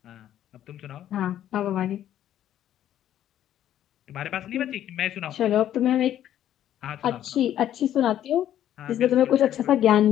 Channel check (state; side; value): quieter; right; 11.5 dB